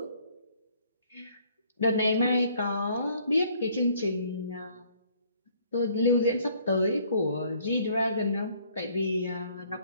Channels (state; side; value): inverted; both; correlation -0.61